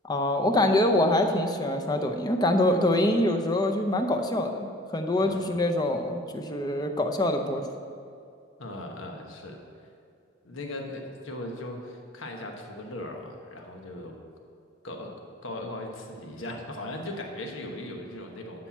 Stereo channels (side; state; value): both; normal; correlation 0.49